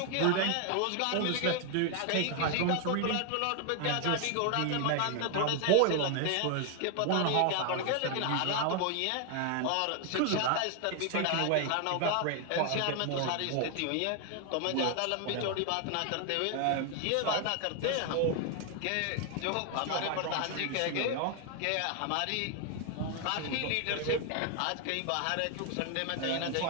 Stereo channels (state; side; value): different; both; correlation 0.00